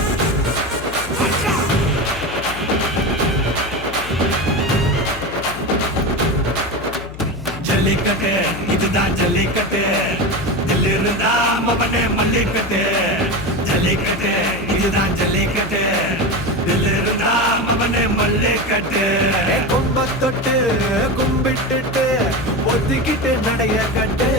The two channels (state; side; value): noise; left; hum, 14 dB below the sound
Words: ஆட்ரா ஜல்லிக்கட்டு இதுதான் ஜல்லிக்கட்டு தில் இருந்தா மவனே மல்லிக்கட்டு ஜல்லிக்கட்டு இதுதான் ஜல்லிக்கட்டு தில் இருந்தா மவனே மல்லிக்கட்டு கொம்ப தொட்டு கும்பிட்டுட்டு ஒத்திக்கிட்டு நடைய கட்டு